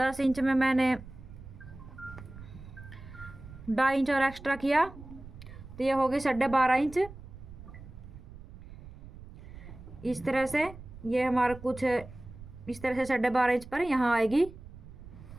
इंच में मैंने 2.5 इंच और एक्स्ट्रा किया, तो ये होगी 12.5 इंच। इस तरह से ये हमारा कुछ इस तरह से 12.5 इंच पर यहाँ आएगी।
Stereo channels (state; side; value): noise; right; rumble, 16 dB below the sound